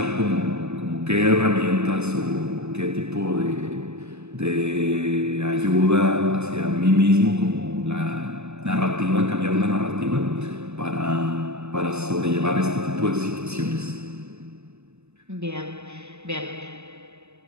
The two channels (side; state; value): left; late; 0.81 ms